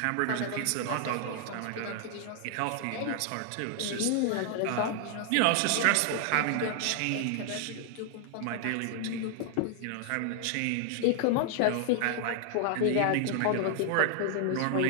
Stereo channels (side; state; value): both; different; correlation 0.00